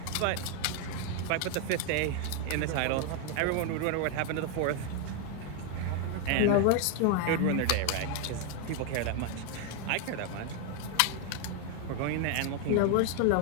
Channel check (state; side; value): different; both; correlation 0.01